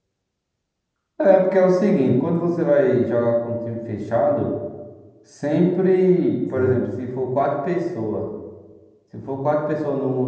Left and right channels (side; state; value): both; identical; correlation 1.00